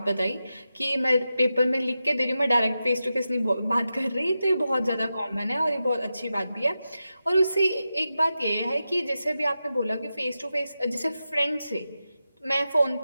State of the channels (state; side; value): inverted; both; correlation -0.91